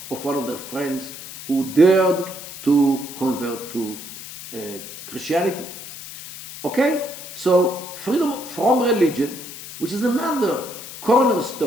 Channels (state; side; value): noise; left; hiss, 12 dB below the sound